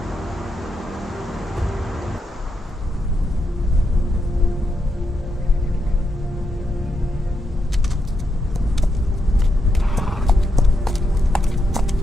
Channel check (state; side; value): normal; both; correlation 0.83